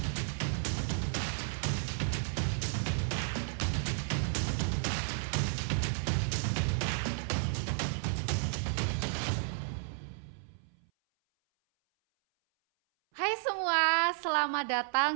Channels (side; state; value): left; silent; 56 dB below the other